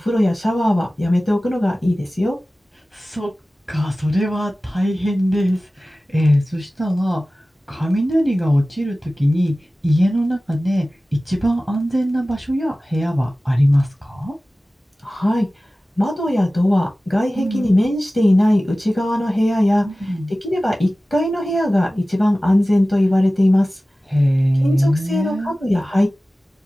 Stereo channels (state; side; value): normal; both; correlation 0.97